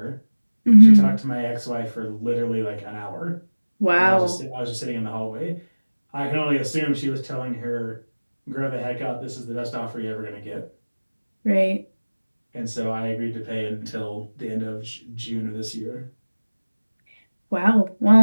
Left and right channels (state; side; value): inverted; both; correlation -1.00